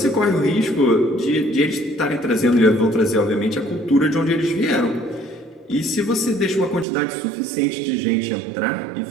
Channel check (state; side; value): drops out; left; at 6.9 s